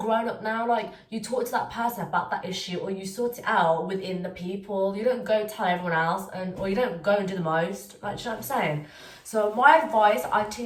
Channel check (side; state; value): both; identical; correlation 1.00